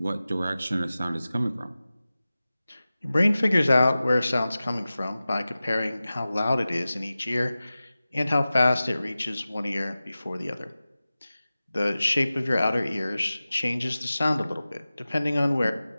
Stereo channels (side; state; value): both; inverted; correlation -0.96